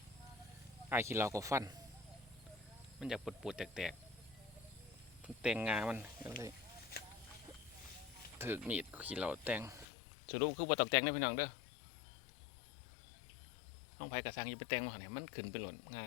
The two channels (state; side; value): drops out; right; at 9.9 s